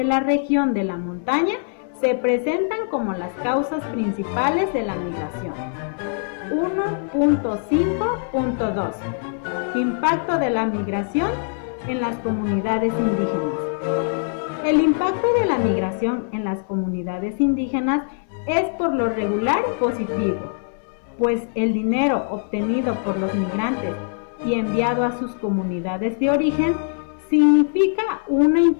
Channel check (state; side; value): silent; right; 64 dB below the other